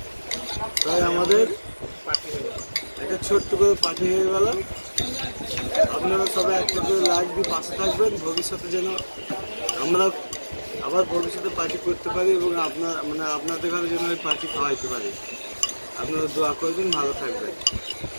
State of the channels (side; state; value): both; inverted; correlation -1.00